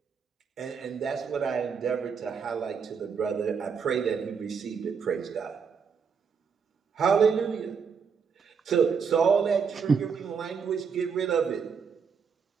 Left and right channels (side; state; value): left; quieter; 6.1 dB